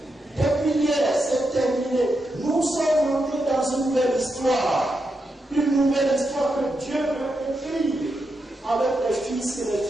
Depuis hier, c'est terminé. Nous sommes montés dans une nouvelle histoire. Une nouvelle histoire que Dieu veut écrire avec les fils et les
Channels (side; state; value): both; normal; correlation 0.85